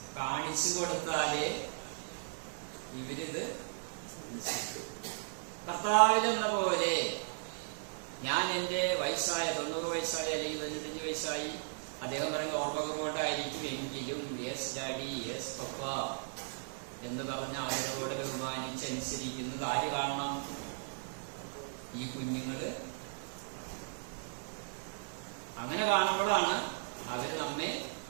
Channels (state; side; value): silent; left; 54 dB below the other